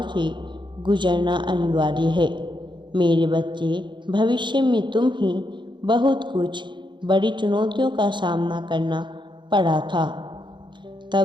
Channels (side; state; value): left; late; 0.23 ms